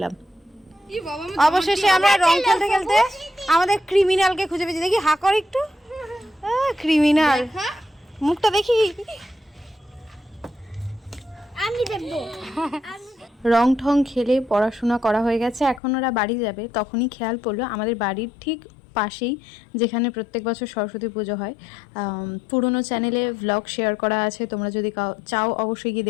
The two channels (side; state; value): right; drops out; at 15.8 s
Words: অবশেষে আমরা রং খেলতে খেলতে আমাদের ক্রিমিনালকে খুঁজে পেয়েছি। দেখি হা কর একটু, ক্রিমিনাল মুখটা দেখি। আমি দেখব। রং ঠং খেলে পড়াশোনা করা হয়ে গেছে, এখন ওরা বাড়ি যাবে। তখনই খেয়াল পড়লো আমাদের বাড়ির ঠিক পাশেই, যেখানে প্রত্যেক বছর সরস্বতী পুজো হয়, পুরনো চ্যানেলে ভ্লগ শেয়ার করা আছে, তোমরা যদি চাও অবশ্যই গিয়ে